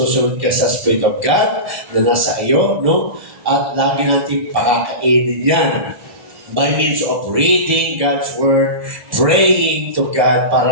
ka sa Spirit of God na nasa iyo, no? At lagi natin pakakainin yan by means of reading God's Word, praying to God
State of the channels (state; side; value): late; left; 1.0 ms